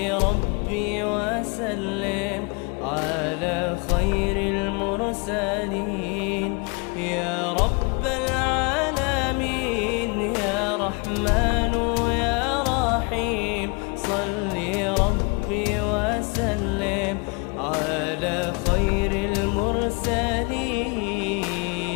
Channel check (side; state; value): right; quieter; 31.3 dB